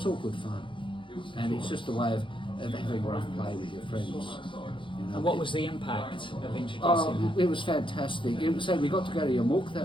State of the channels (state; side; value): late; right; 0.24 ms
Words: all good fun. And it's just a way of having rough play with your friends. And what was the impact of introducing that? It was fantastic. We got to go to Yarmouk